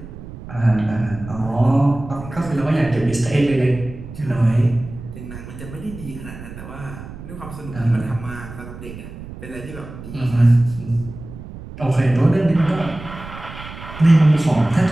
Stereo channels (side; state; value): right; noise; rumble, 13 dB below the sound